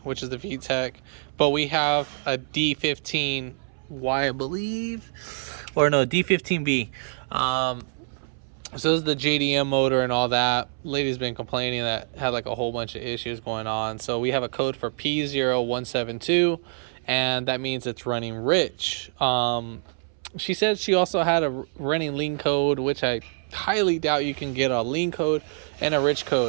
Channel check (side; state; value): left; silent; 61 dB below the other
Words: which is the VTEC, but we have a D15Y, I believe, or no, D15B. So this is the JDM motor and all that. Lady's been complaining that had like a whole bunch of issues going on. So we have a code for p0172, and that means it's running rich. She said she also had a running lean code, which I highly doubt you can get a lean code and a rich